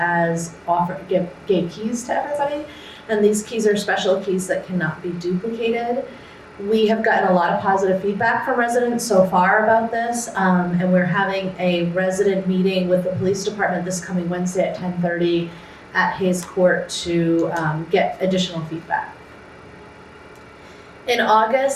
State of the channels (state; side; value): identical; both; correlation 1.00